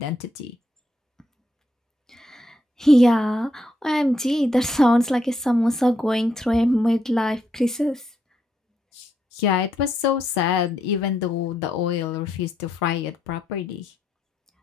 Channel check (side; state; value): both; normal; correlation 0.78